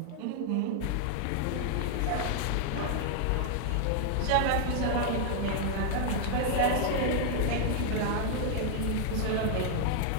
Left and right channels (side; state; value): both; different; correlation 0.00